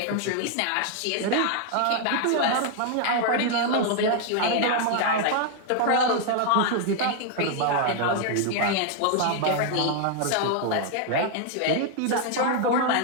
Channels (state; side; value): different; both; correlation 0.00